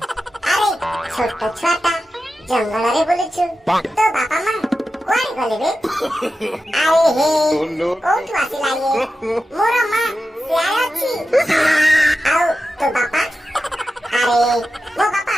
আরে ছোট ছুয়াটা জঙ্গলরে বুলুছু তো বাপা মা কুଆଡେ গলে ବେ আরে হে কোଉଠୁ ଆସିଲା ଇଏ ମୋର ମା ସିଆଡେ ଅଛି ଆଉ ତୋ ବାପା ଆରେ ମୋ ବାପା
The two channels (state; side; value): normal; both; correlation 0.91